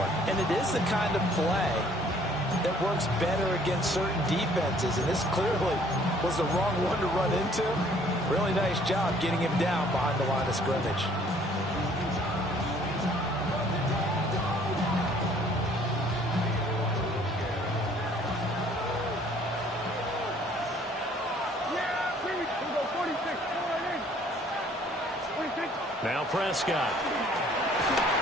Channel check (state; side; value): normal; both; correlation 0.58